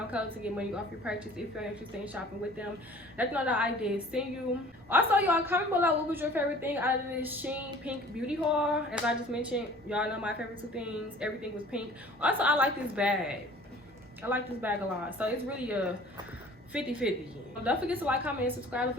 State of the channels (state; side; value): normal; both; correlation 0.48